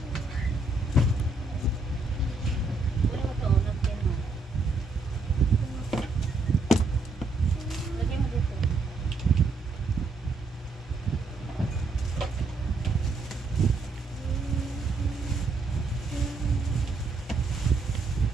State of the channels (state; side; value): quieter; left; 3.4 dB